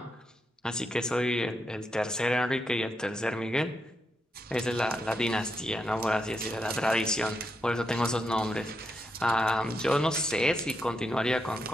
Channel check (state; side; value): normal; both; correlation 0.83